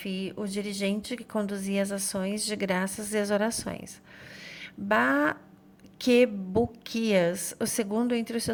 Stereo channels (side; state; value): both; identical; correlation 1.00